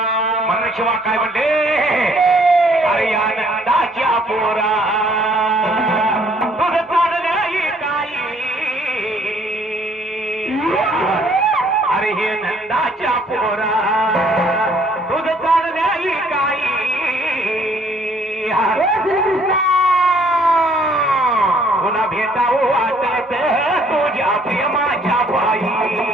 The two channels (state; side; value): normal; both; correlation 0.62